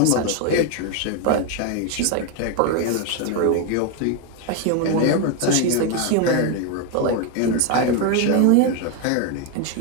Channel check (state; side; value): different; both; correlation 0.01